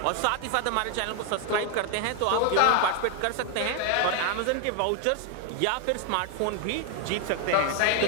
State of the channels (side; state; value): both; different; correlation 0.00